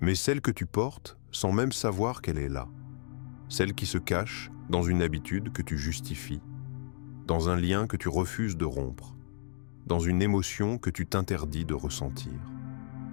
celle que tu portes sans même savoir qu'elle est là, celle qui se cache dans une habitude que tu justifies, dans un lien que tu refuses de rompre, dans une émotion que tu t'interdis de ressentir.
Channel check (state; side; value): silent; right; digital silence